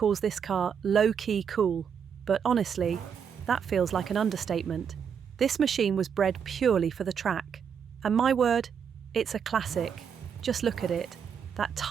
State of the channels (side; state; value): left; quieter; 7.3 dB